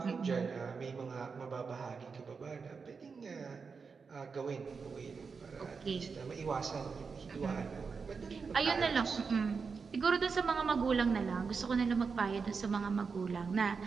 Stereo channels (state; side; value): quieter; left; 5.2 dB